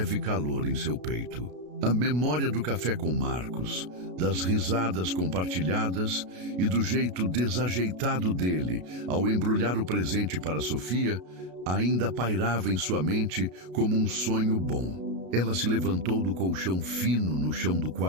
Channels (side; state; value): left; late; 33 ms